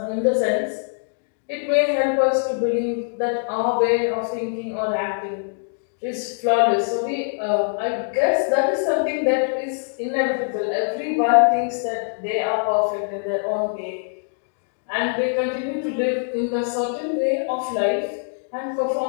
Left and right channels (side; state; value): right; silent; digital silence